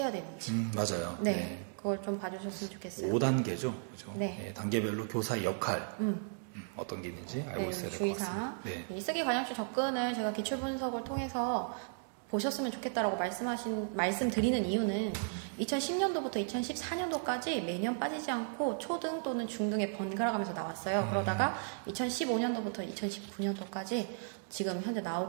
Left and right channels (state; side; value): silent; left; digital silence